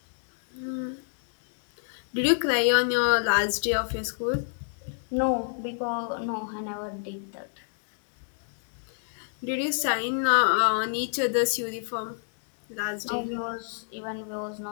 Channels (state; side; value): silent; right; digital silence